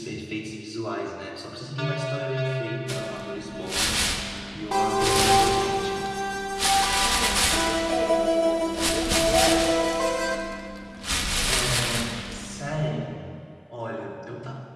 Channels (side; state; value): both; identical; correlation 1.00